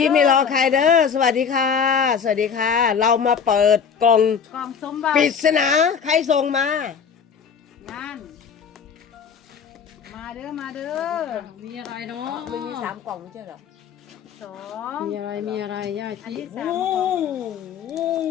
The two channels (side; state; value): right; quieter; 6.7 dB